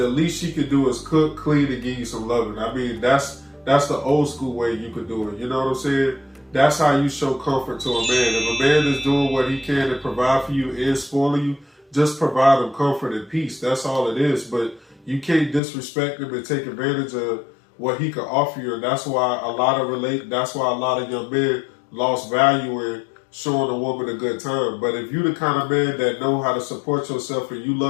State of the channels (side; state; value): right; drops out; at 15.6 s